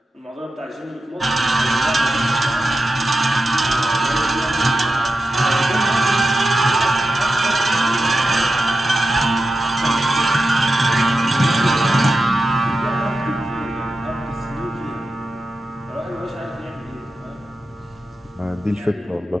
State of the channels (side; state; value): both; normal; correlation 0.91